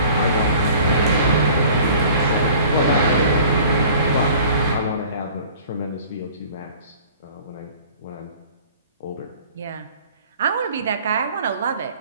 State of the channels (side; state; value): both; inverted; correlation -0.48